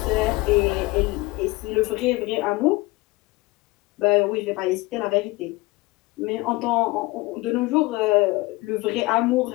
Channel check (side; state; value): right; quieter; 22.0 dB